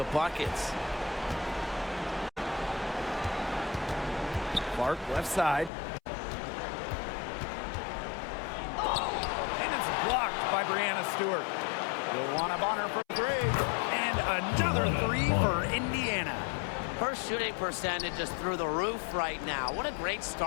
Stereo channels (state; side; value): drops out; right; at 5.7 s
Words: buckets. Clark left side. And it's blocked by Brianna Stewart. Luana Bonner for three. And another three for Indiana. Her shooting percentage is through the roof right now. What a great